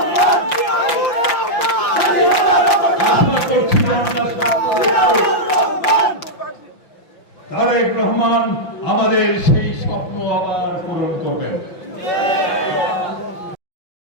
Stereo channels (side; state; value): right; late; 5.8 ms